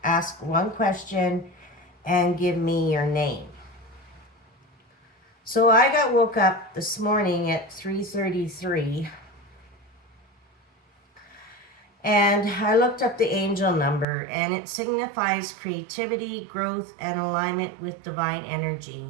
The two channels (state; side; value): drops out; left; at 14.1 s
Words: ask one question and give me your name. So I got woke up this morning at 3:33 and I looked up the angel number, and it signifies creativity, growth, and alignment with divine energy.